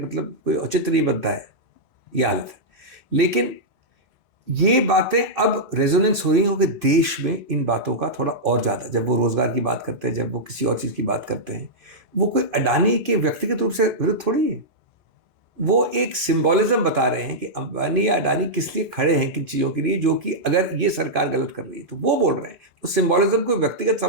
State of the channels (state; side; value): normal; both; correlation -0.09